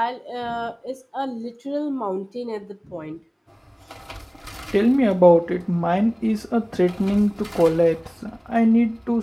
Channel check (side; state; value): both; identical; correlation 1.00